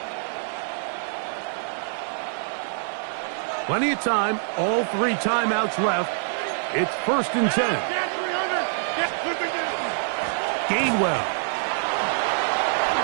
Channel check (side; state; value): left; silent; 62 dB below the other